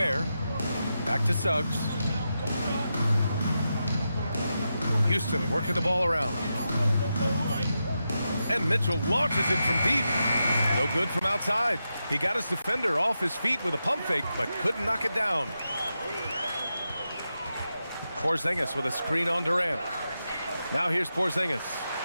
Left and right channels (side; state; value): both; inverted; correlation -0.88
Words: Back to Suggs. Houston working the ball around. And Mitchell launches it from deep. No good from outside. He got his defender off his feet with a pump fake, but couldn't knock it down. Porzingis with a screen on Durant. Now here's Porzingis,